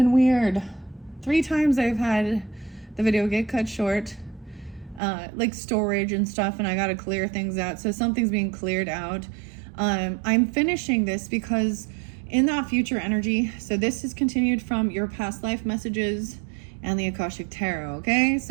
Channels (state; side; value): drops out; left; at 5.0 s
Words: weird. 3 times I've had the video get cut short, like storage and stuff, and I got to clear things out. So something's being cleared out. I'm finishing this because in that future energy, so this is continued from your past life messages and the Akashic Tarot, okay?